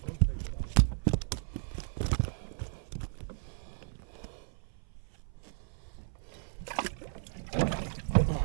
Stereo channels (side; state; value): left; silent; 55 dB below the other